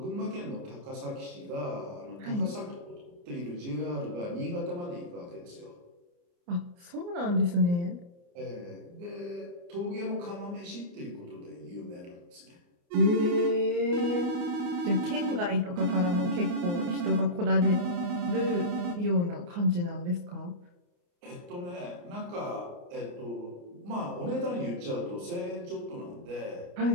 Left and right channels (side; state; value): left; late; 29 ms